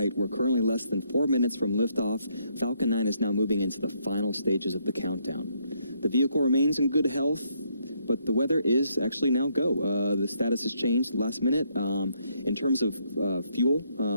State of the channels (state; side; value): inverted; both; correlation -0.73